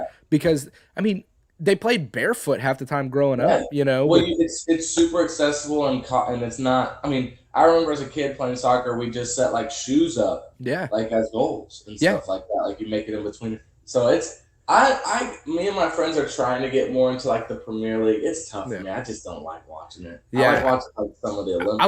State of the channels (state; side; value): identical; both; correlation 1.00